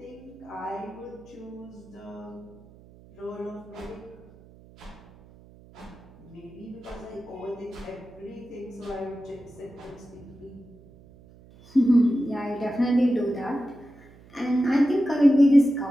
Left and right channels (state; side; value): noise; right; hum, 23 dB below the sound